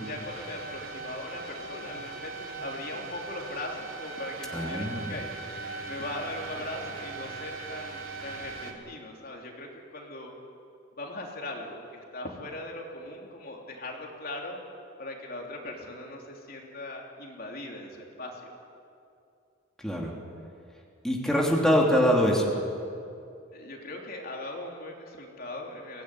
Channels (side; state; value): both; normal; correlation 0.45